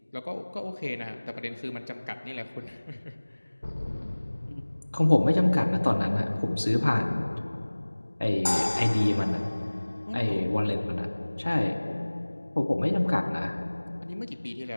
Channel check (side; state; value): both; inverted; correlation -1.00